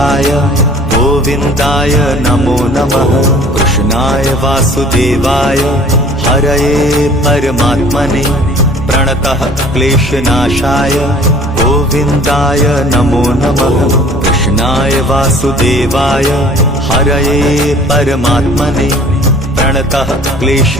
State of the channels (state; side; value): normal; both; correlation 0.51